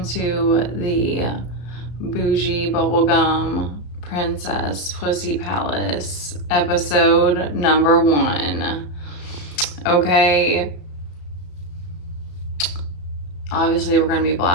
to the Bougie Bubblegum Princess Pussy Palace episode number 1. Okay. Obviously, we're going to be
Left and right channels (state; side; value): late; right; 34 ms